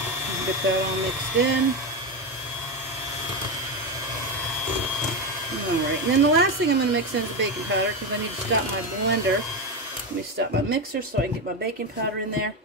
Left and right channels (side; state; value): both; normal; correlation 0.14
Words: Get that all mixed in. Alright, and then the last thing I'm going to mix in is the baking powder because I need to stop my blender. Let me stop my mixer so I can get my baking powder in there.